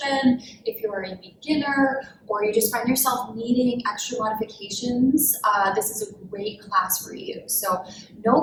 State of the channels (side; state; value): both; identical; correlation 1.00